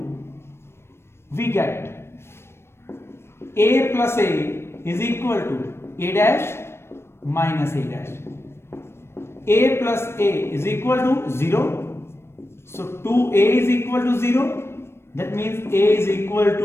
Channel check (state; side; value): late; right; 0.12 ms